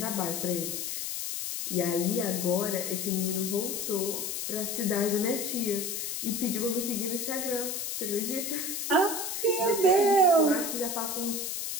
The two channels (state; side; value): noise; left; hiss, 3 dB below the sound